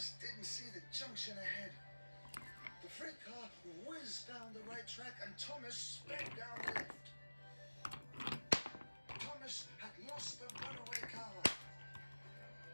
didn't see the junction ahead. The freight car whizzed down the right track and Thomas sped down the left. Thomas had lost the runaway car.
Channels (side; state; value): both; inverted; correlation -1.00